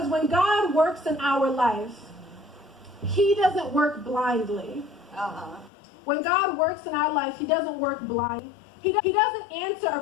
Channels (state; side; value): drops out; right; at 5.7 s